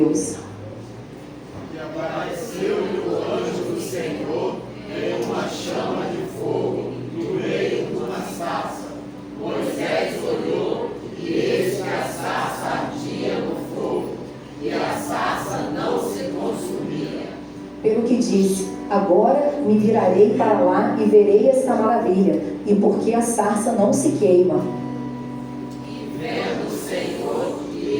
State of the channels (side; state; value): both; identical; correlation 1.00